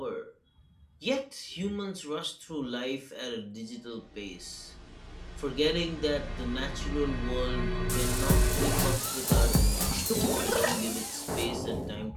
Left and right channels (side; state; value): both; identical; correlation 1.00